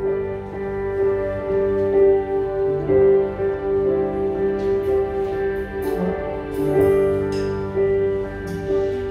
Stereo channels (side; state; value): both; identical; correlation 1.00